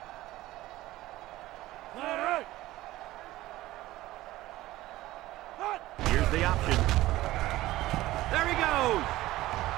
Here's the option. There he goes.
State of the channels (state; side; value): quieter; left; 16.7 dB